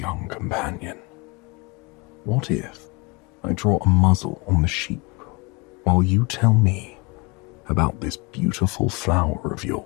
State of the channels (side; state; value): right; quieter; 26.9 dB